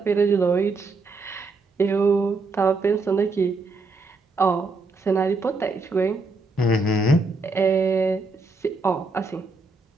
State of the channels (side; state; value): left; quieter; 3.5 dB